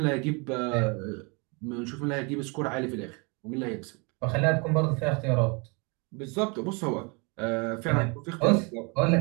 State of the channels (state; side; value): quieter; left; 31.3 dB